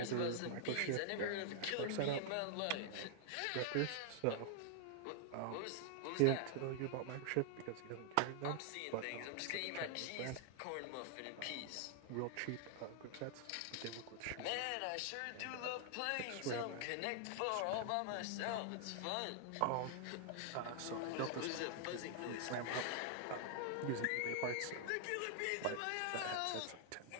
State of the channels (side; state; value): both; different; correlation 0.00